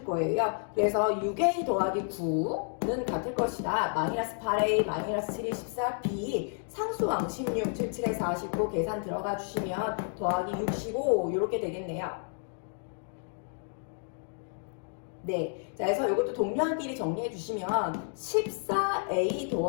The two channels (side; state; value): right; silent; 56 dB below the other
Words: 거예요. 그래서 6A 더하기 9는 같을 것이다. 마이너스 8A, 마이너스 7이 14B, 상수항 16, 77에 49 계산 들어가 주시면 더하기 65 이렇게 되겠네요. 네, 자, 그래서 이것도 동료한끼리 정리해 주시면 14A